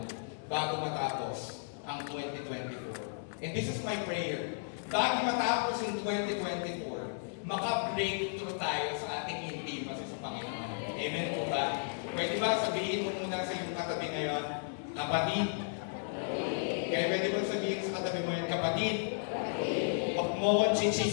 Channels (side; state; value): right; silent; digital silence